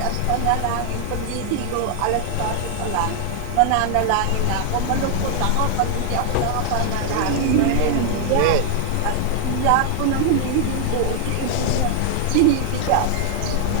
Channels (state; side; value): different; both; correlation -0.01